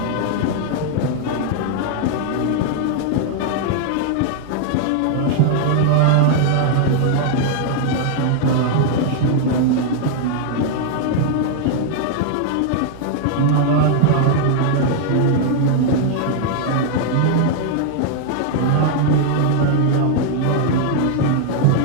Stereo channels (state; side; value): different; both; correlation 0.00